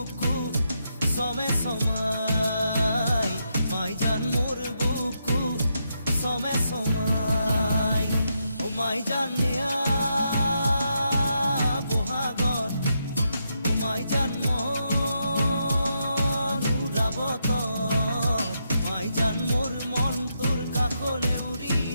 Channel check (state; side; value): inverted; both; correlation -0.82